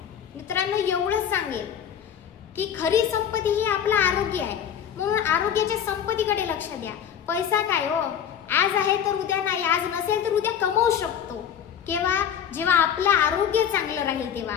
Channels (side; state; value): right; quieter; 8.7 dB